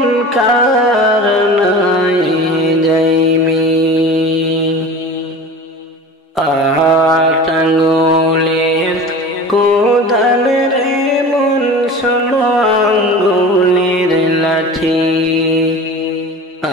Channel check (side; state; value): both; normal; correlation 0.36